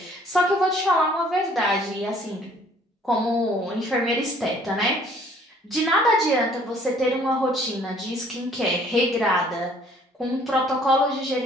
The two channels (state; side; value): normal; both; correlation 0.58